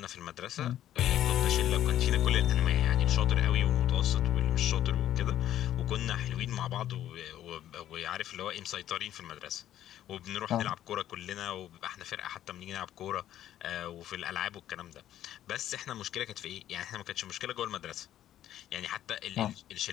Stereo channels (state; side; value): quieter; right; 12.0 dB